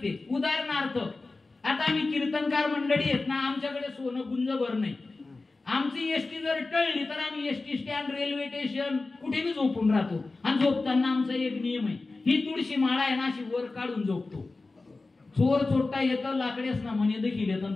उदाहरणार्थ आता आम्ही कीर्तनकार मंडळी आहेत ना, आमच्याकडे सोनं गुंजभर नाही. आमची एसटी जर टळली तर आम्ही एसटी स्टँड, रेल्वे स्टेशन कुठेही झोपून राहतो. आणि झोपताना आमचा एक नियम आहे, ही तुळशी माळा आहे ना अशी वर काढून झोपतो. चोर चोरटा येतं लाकडेच ना म्हणे देखील येतं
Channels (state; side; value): quieter; right; 3.5 dB